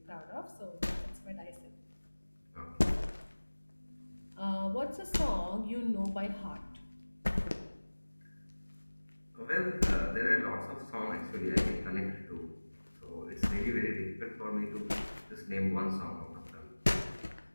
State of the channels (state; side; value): inverted; both; correlation -1.00